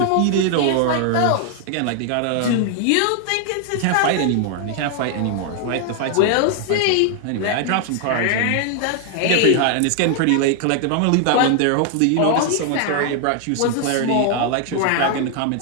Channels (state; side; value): different; both; correlation 0.00